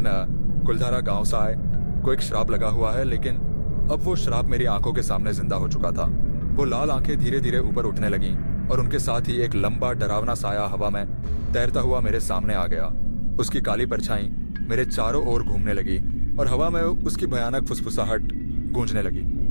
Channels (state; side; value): inverted; both; correlation -1.00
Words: कुलधारा गांव साए को एक श्राप लगा हुआ है, लेकिन अब वो श्राप मेरी आंखों के सामने जिंदा हो चुका था। वो लाल आंखें धीरे धीरे ऊपर उठने लगीं और उनके साथ ही एक लंबा डरावना साया हवा में तैरता हुआ मेरे सामने आ गया। उसकी काली परछाई मेरे चारों ओर घूमने लगी और हवा में उसकी भयानक फुसफुसाहट गूंजने लगी।